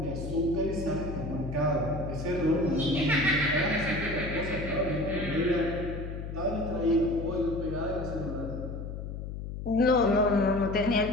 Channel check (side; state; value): left; noise; hum, 7 dB below the sound